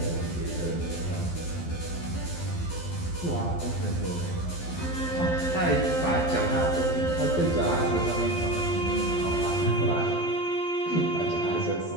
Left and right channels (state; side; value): late; right; 12 ms